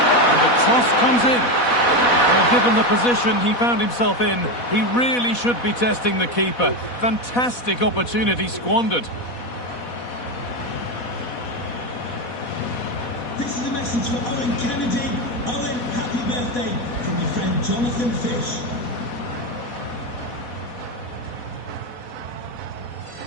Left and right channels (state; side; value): late; right; 4.1 ms